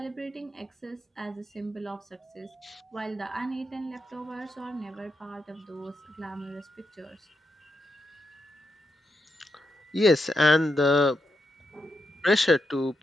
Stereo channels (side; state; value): both; normal; correlation 0.84